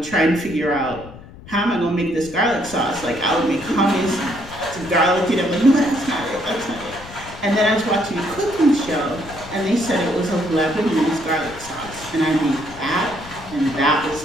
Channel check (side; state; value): left; noise; rumble, 17 dB below the sound